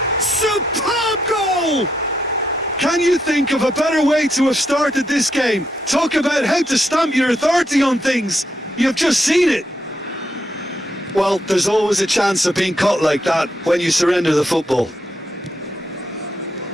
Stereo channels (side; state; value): both; normal; correlation 0.79